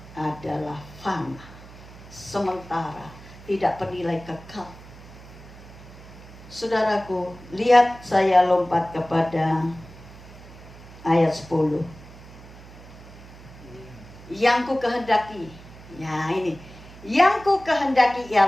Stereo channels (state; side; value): noise; right; hum, 18 dB below the sound